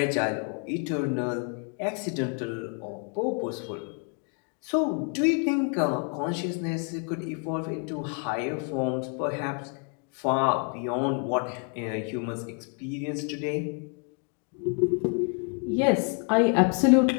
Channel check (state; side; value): quieter; right; 39.2 dB